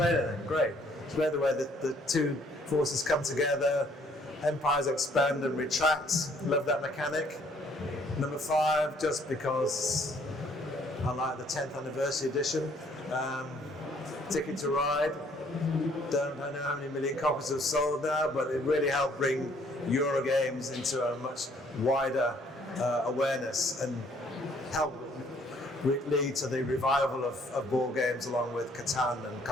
it. Great. It's where the way that the two forces come together, empires expand and retract. Love that mechanic. Number 5, just because I like the 10th anniversary edition. Ticket to Ride. Don't know how many million copies have sold now, but it really helped bring Eurogames into a much wider awareness and help lead to the revival of board games along with Catan and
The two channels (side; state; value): both; normal; correlation 0.63